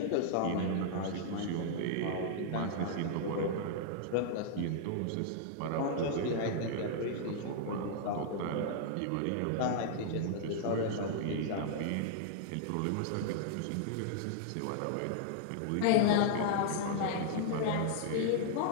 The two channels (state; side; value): different; both; correlation -0.01